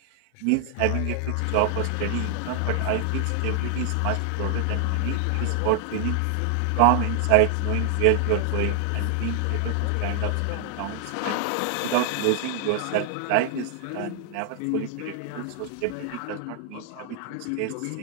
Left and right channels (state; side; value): different; both; correlation 0.00